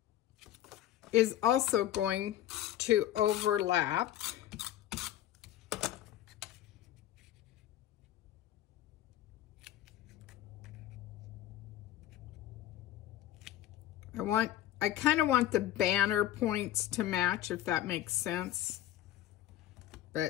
is also going to overlap. I kind of want the banner points to match, if that makes sense.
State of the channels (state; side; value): quieter; right; 13.0 dB